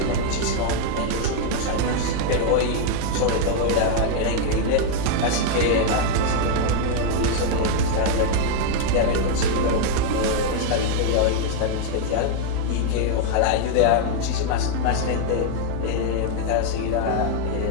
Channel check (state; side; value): different; both; correlation 0.00